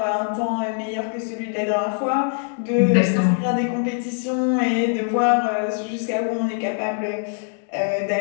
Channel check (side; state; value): right; silent; 64 dB below the other